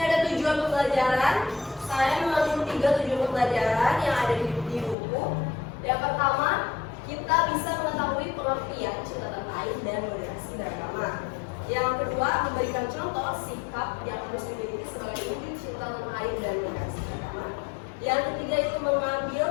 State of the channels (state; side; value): drops out; right; at 5.0 s